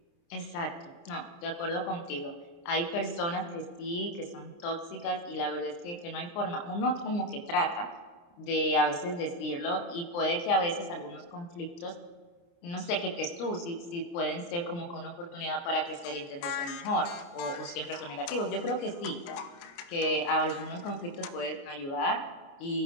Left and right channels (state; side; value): late; right; 29 ms